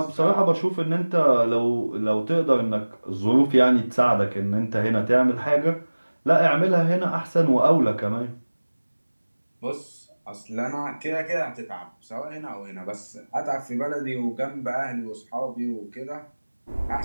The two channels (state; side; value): inverted; both; correlation -1.00